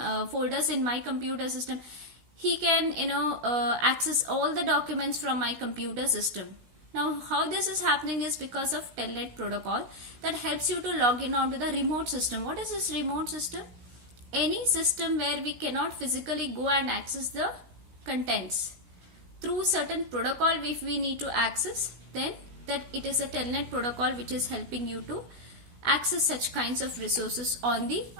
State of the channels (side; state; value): left; late; 16 ms